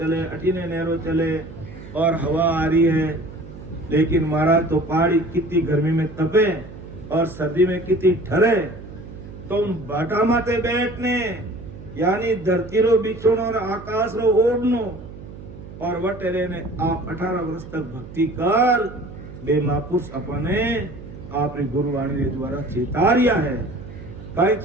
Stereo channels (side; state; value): right; noise; hum, 15 dB below the sound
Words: अटीने नहरो चले और हवा आ रही है। लेकिन महाराज तो पहाड़ी कितनी गर्मी में तपे और सर्दी में कितनी ठरे, तो उन बाटा माते बैठने यानी धरती रो बिछोनो और आकाश रो ओढ़नो और वटेरे ने आप 18 वर्ष तक भक्ति कर बे महापुरुष अपने आपने गुरुवाणी के द्वारा चेतारिया है। कई